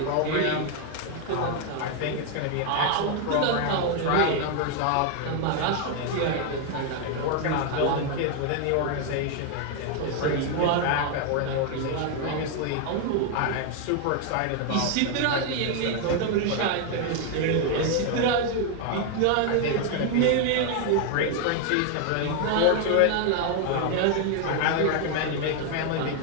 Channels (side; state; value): both; different; correlation 0.01